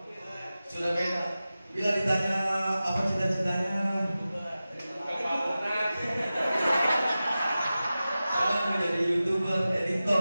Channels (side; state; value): both; inverted; correlation -0.95